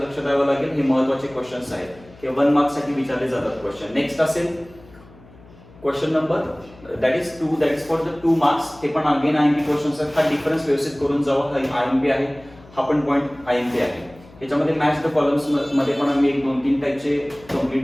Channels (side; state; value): left; noise; hum, 23 dB below the sound